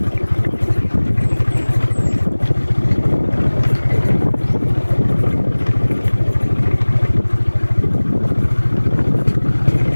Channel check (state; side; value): inverted; both; correlation -1.00